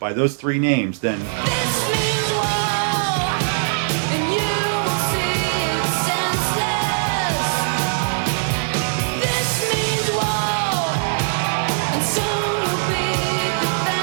those three names, then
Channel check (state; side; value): silent; left; digital silence